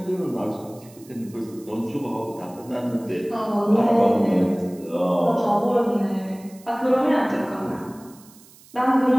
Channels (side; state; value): right; noise; hiss, 24 dB below the sound